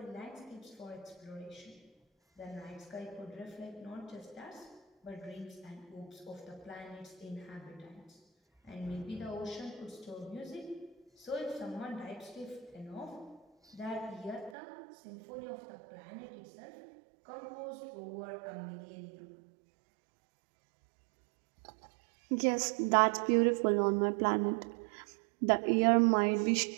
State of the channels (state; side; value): drops out; left; at 14.6 s